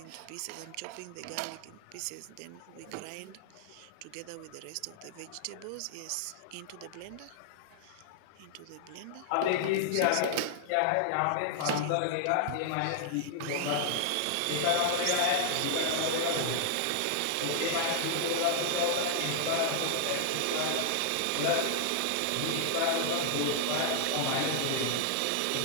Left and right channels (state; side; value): different; both; correlation 0.00